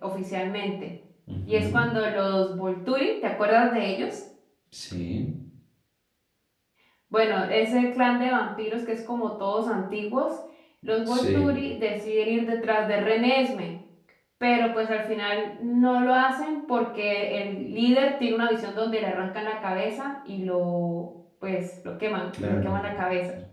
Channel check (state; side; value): identical; both; correlation 1.00